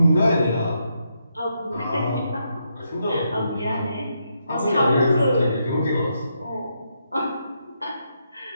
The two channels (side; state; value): both; inverted; correlation -0.80